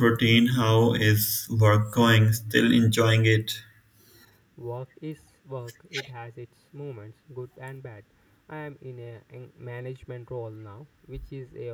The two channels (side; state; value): both; identical; correlation 1.00